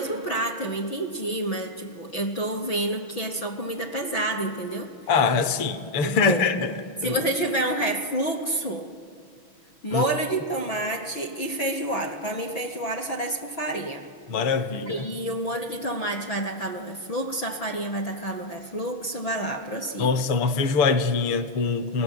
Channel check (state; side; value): late; right; 6.0 ms